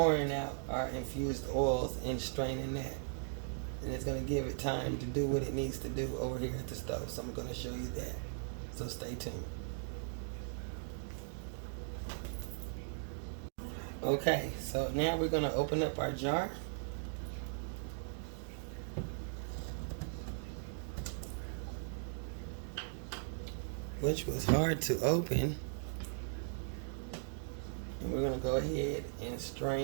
out our infused oils and straining that. And it's gonna give it time to do what it needs to do over here at the stove. So I'm gonna show you that. So stay tuned. Okay, so now we're gonna open up our jar. Which was hard to open. And we're gonna go ahead and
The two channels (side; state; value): left; silent; digital silence